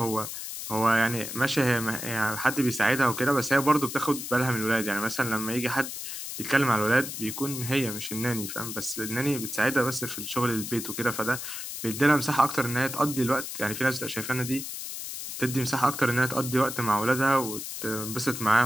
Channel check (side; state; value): left; noise; hiss, 7 dB below the sound